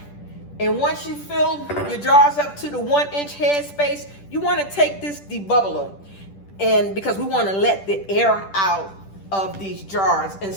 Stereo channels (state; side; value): late; right; 10 ms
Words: And once you fill your jars up to the 1-inch headspace, you want to take this debubbler, and because we want to let the air out of these jars. And